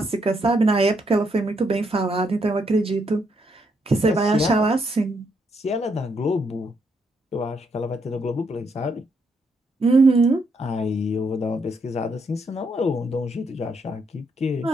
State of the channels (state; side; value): normal; both; correlation 0.76